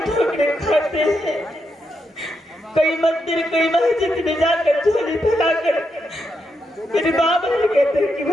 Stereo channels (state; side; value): normal; both; correlation 0.82